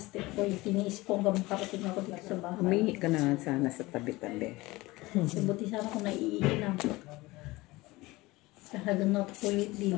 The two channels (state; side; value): quieter; right; 20.7 dB